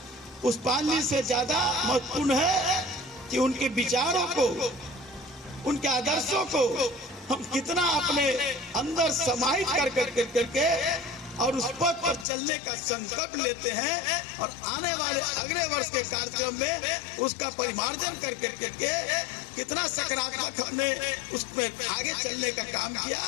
पुष्पांजलि से ज्यादा महत्वपूर्ण है कि उनके विचारों को, उनके आदर्शों को हम कितना अपने अंदर समाहित करके और उस पथ पर चलने का संकल्प लेते हैं और आने वाले अगले वर्ष के कार्यक्रम में उसका परिमार्जन करके कितना सकारात्मक हमने उसमें आगे चलने का काम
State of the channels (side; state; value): right; drops out; at 12.2 s